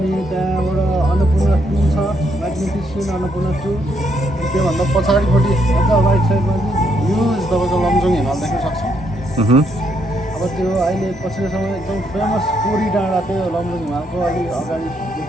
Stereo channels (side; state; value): both; normal; correlation 0.75